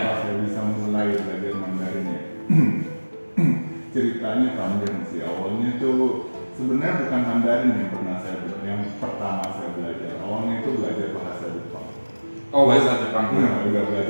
saya bisa mulai belajar Mandarin ya? Ceritanya panjang sih. Awalnya tuh sebenarnya bukan Mandarin yang pertama saya belajar. Awalnya itu belajar bahasa Jepang. Oh, bahasa Jepang. Nah, udah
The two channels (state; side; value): inverted; both; correlation -1.00